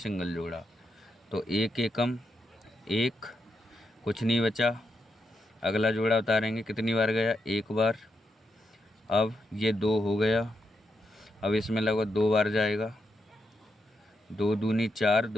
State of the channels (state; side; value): normal; both; correlation 0.83